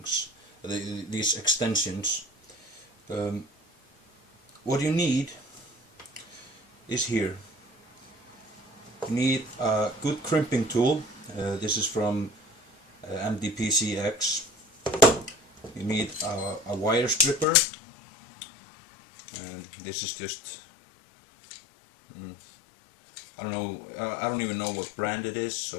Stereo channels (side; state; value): right; drops out; at 17.4 s